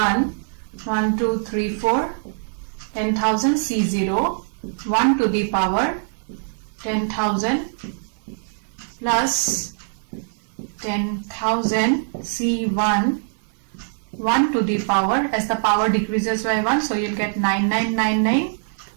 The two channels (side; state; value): left; silent; 64 dB below the other